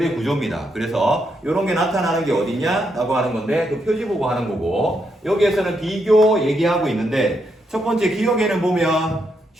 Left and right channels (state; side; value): normal; both; correlation 0.79